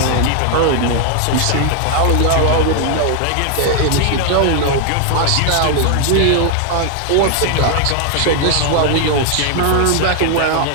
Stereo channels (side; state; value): both; different; correlation 0.00